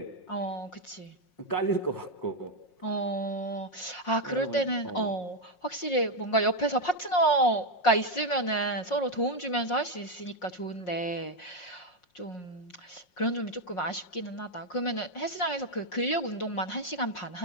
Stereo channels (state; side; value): late; right; 5.5 ms